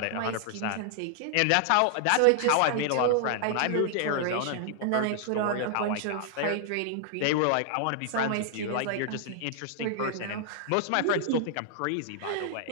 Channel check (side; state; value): both; different; correlation -0.01